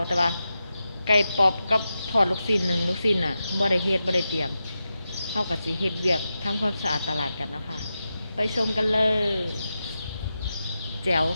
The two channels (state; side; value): inverted; both; correlation -0.90